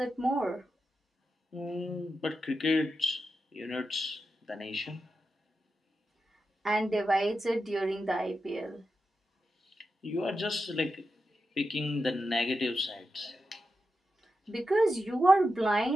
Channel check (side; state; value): both; normal; correlation 0.89